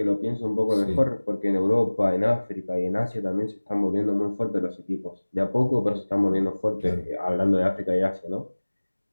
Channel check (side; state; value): both; inverted; correlation -1.00